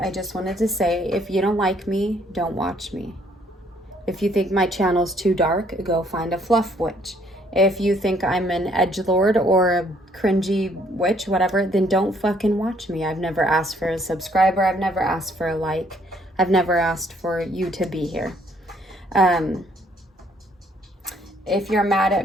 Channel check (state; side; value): normal; both; correlation 0.65